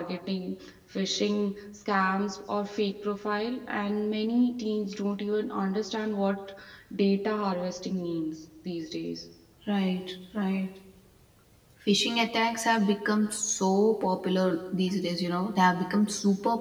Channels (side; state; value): both; identical; correlation 1.00